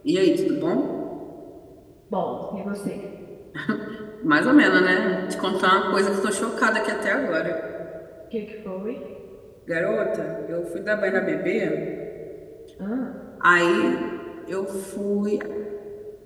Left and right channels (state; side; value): identical; both; correlation 1.00